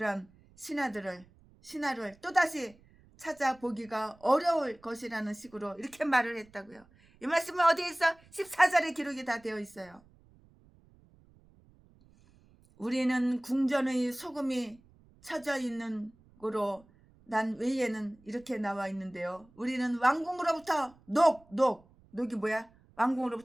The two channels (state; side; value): noise; right; rumble, 28 dB below the sound